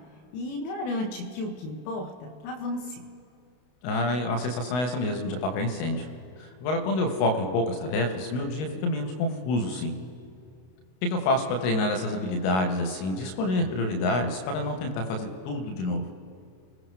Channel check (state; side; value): late; right; 32 ms